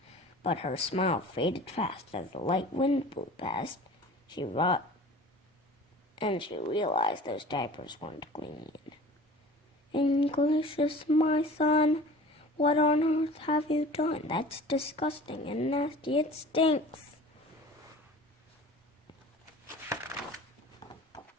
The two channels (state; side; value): normal; both; correlation 0.42